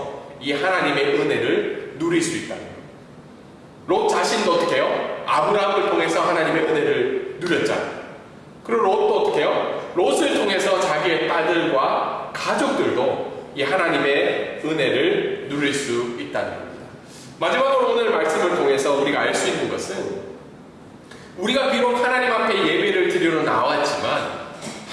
이 하나님의 은혜를 누릴 수 있다는 거예요. 롯 자신도 어떻게 해요? 아브라함을 통해서 하나님의 은혜를 누렸잖아요. 그리고 롯도 어떻게 해요? 롯을 통해서 자기의 딸들과 가족들도 이 하나님의 은혜를 누릴 수 있다는 겁니다. 마지막으로 오늘 말씀을 통해서 우리가 알 수 있는 것은 우리가 비록 하나님 앞에 예배를 드리러 나왔지만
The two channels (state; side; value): identical; both; correlation 1.00